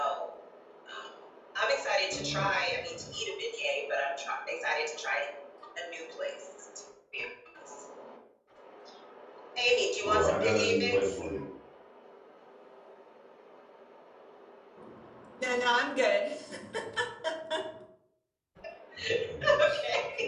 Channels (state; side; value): identical; both; correlation 1.00